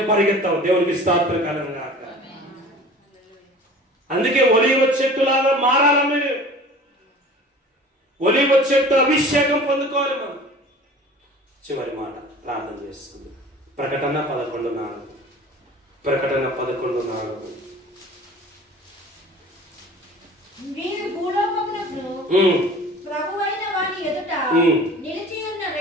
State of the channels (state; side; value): normal; both; correlation 0.43